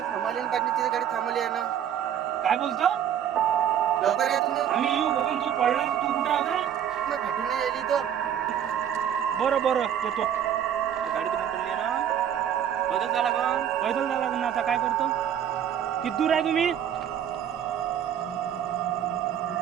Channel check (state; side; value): quieter; left; 9.6 dB